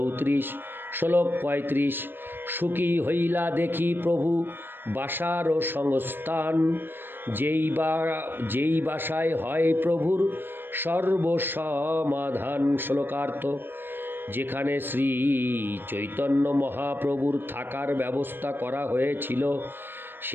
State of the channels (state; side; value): late; left; 0.097 ms